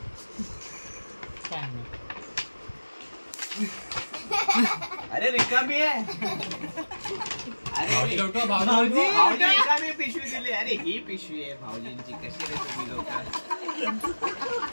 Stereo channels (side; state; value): both; inverted; correlation -1.00